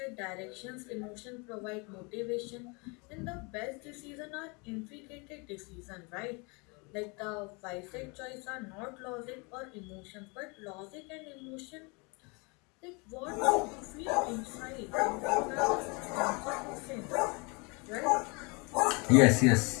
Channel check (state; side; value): quieter; right; 30.2 dB